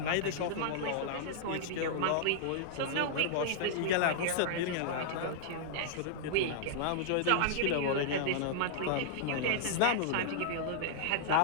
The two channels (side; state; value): both; different; correlation -0.02